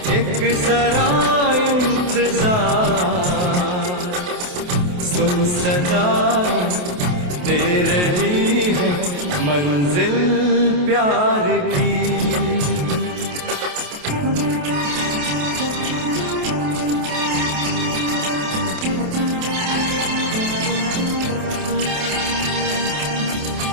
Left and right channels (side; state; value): left; late; 28 ms